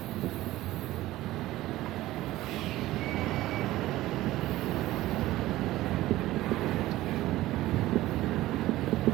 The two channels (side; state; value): left; quieter; 16.4 dB